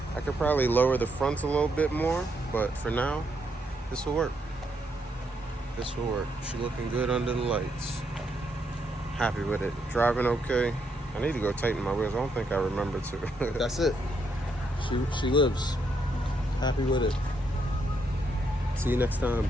I could probably lower the fronts a little bit more, but for now, this will work. This will work. She looking good under the lights. Happy with it. Driving okay. I need to go tighten my wheels. I don't think I remember to. That's it. She lives. Happy with it. See you next time.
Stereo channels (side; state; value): both; normal; correlation 0.77